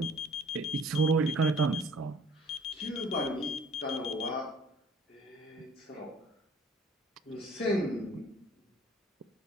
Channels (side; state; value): both; normal; correlation 0.53